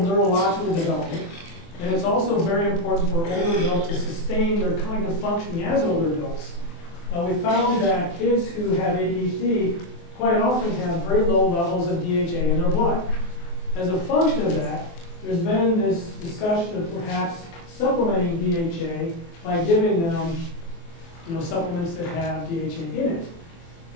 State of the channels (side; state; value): right; late; 24 ms